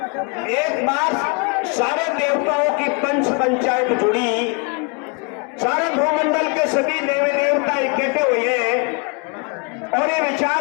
एक बार सारे देवताओं की पंच पंचायत जुड़ी, सारे भूमंडल के सभी देवी देवता इकट्ठे हुए और ये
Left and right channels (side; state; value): right; quieter; 33.5 dB